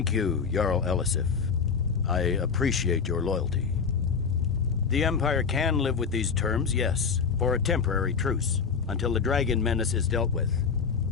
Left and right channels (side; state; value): right; quieter; 5.9 dB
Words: you, Jarl Elisif. I appreciate your loyalty. The Empire can live with these terms, yes, for a temporary truce, until the dragon menace is dealt with.